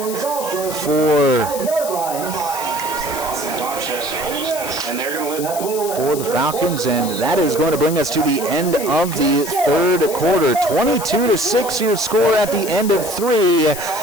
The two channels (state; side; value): noise; left; hiss, 9 dB below the sound